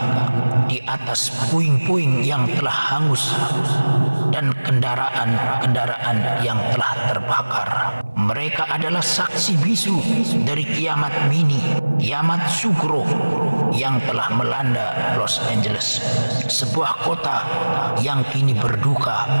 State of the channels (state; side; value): inverted; both; correlation -1.00